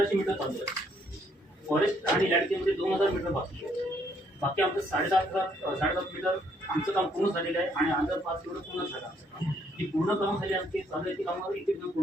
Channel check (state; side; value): normal; both; correlation 0.69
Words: मीटर चालू आहे. फॉरेस्ट आणि लँडकेमध्ये 2000 मीटर बाकी आहे. बाकी आमचं 7.5 मीटर आमचं काम पूर्ण झालेलं आहे आणि 1005 मीटर पूर्ण झालं आमचं काम. ही पूर्ण कामं झाली आमची चालू आहे ती कामावर एक